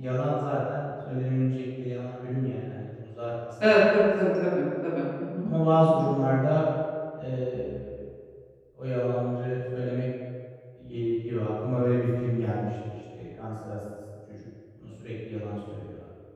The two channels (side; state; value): both; identical; correlation 1.00